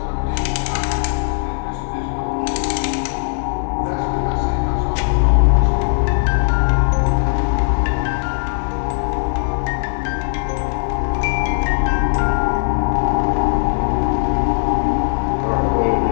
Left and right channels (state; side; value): silent; right; digital silence